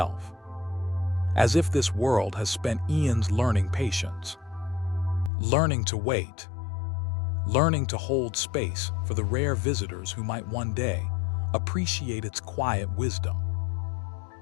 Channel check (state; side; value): drops out; right; at 5.3 s